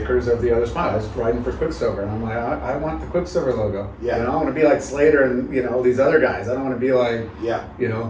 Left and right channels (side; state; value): both; identical; correlation 1.00